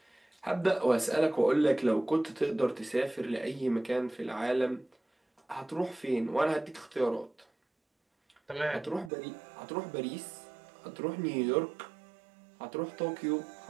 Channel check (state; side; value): drops out; left; at 9.1 s